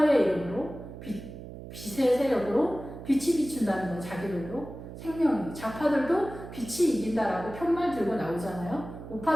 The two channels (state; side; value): noise; right; hum, 12 dB below the sound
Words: 이름으로 빛의 세력으로 빛이 비춘다는 건 자기들도 생명이 자파들도 빛이 이긴다라고 편말 들고 나오잖아요.